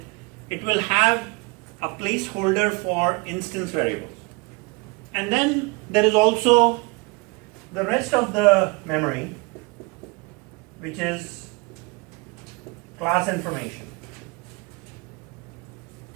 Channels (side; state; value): left; quieter; 27.7 dB